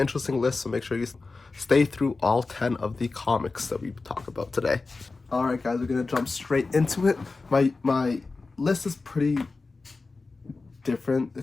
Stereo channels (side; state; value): right; quieter; 3.8 dB